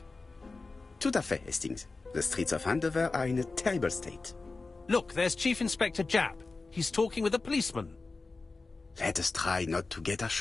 Tout à fait, Hastings. The streets of Andover are in a terrible state. Look, there's Chief Inspector Japp. He's talking with a policeman. Let us try not to get our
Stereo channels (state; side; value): quieter; right; 3.7 dB